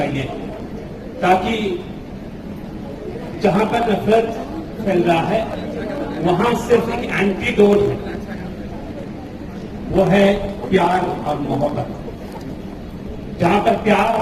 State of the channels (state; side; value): identical; both; correlation 1.00